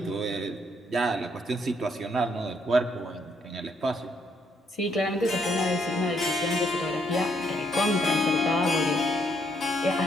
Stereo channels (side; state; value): both; normal; correlation 0.72